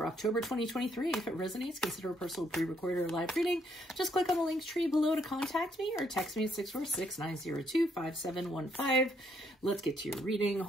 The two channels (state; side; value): normal; both; correlation 0.72